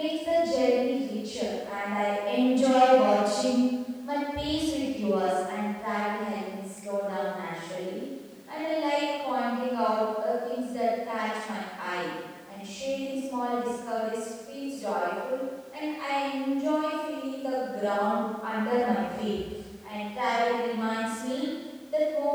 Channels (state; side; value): identical; both; correlation 1.00